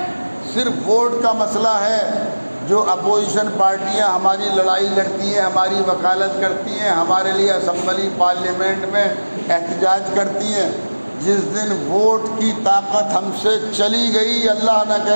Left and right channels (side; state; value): both; inverted; correlation -1.00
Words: صرف ووٹ کا مسئلہ ہے۔ جو اپوزیشن پارٹیاں ہماری لڑائی لڑتی ہیں، ہماری وکالت کرتی ہیں، ہمارے لیے اسمبلی پارلیمنٹ میں احتجاج کرتی ہیں، جس دن ووٹ کی طاقت ہم سے چلی گئی، اللہ نہ